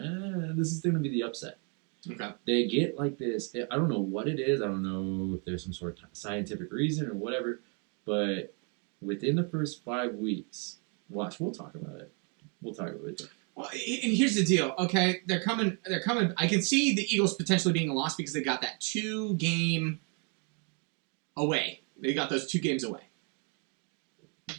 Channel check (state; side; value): quieter; left; 37.4 dB